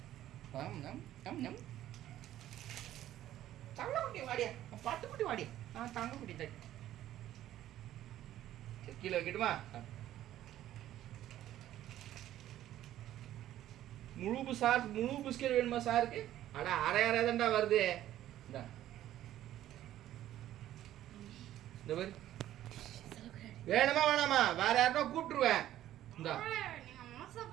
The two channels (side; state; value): left; quieter; 12.9 dB